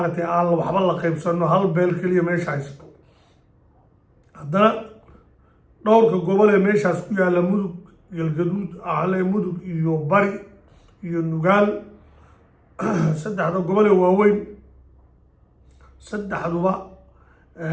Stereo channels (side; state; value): both; identical; correlation 1.00